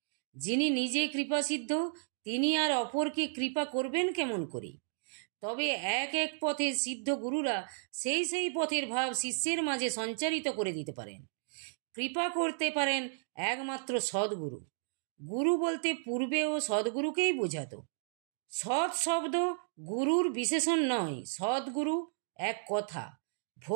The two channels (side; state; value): left; silent; digital silence